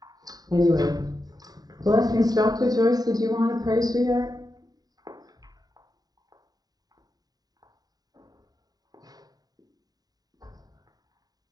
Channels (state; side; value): late; left; 0.18 ms